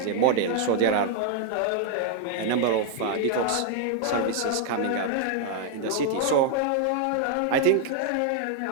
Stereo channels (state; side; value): different; both; correlation 0.00